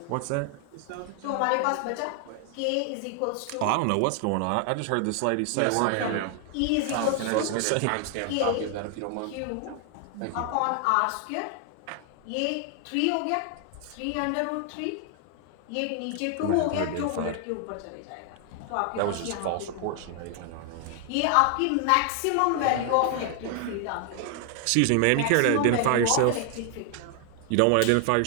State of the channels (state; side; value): different; both; correlation 0.00